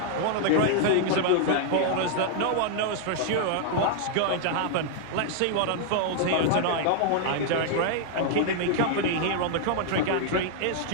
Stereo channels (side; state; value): both; different; correlation 0.00